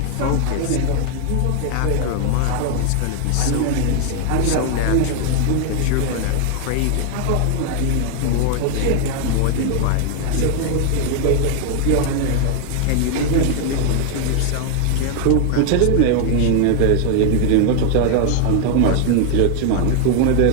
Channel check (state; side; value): different; both; correlation 0.00